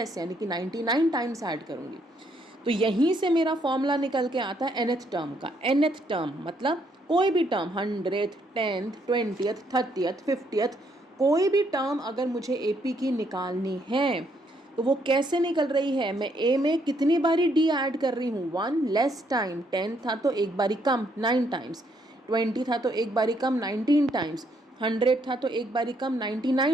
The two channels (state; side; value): normal; both; correlation 0.72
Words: यानी कि 99 टाइम्स ऐड करूँगी। तो यहीं से मेरा फॉर्मूला निकल के आता है nth टर्म का। nth टर्म मतलब कोई भी term 100th 10th 20th 30th 50th कोई भी टर्म अगर मुझे एपी की निकालनी है तो वो कैसे निकल रही है, मैं ए में कितनी बारी डी ऐड कर रही हूँ, 1 लेस टाइम, 10 था तो एक बारी कम 9 टाइम्स, 20 था तो एक बारी कम 19 टाइम्स, 100 था तो एक बारी कम